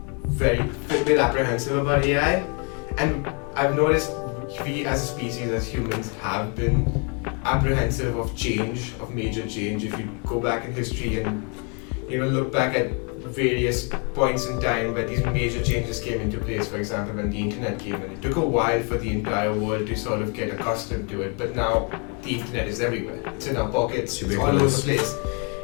apprehensive about AI, and I've noticed we, as a species, as humans, have been apprehensive of change, of major change. If you go back in history and look back at various points in time where these major changes came into place, for example when the internet came in, it took a while for the entire world to sort of get accustomed to it, but now the internet is everywhere. It's in our pockets, it's all over the place.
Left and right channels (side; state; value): right; quieter; 36.0 dB